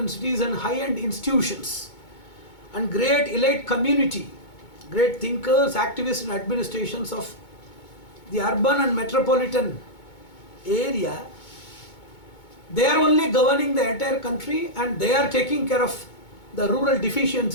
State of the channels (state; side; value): late; right; 2.2 ms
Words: cities and high-end institutions and great elite community, great thinkers, activists and administrations of the urban and metropolitan area, they are only governing the entire country and they are taking care of the rural